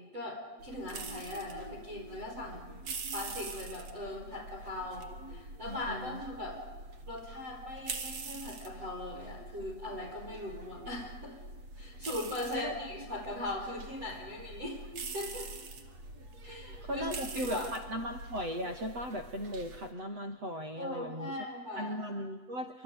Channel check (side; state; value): left; late; 8.0 ms